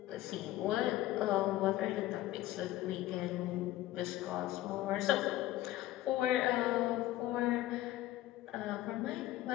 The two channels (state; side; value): quieter; right; 15.3 dB